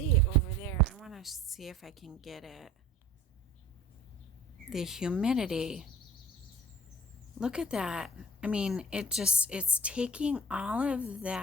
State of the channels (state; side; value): normal; both; correlation 0.43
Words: over there, I want to see if I can get it. The humidity. Look at that. I mean, it's taking all of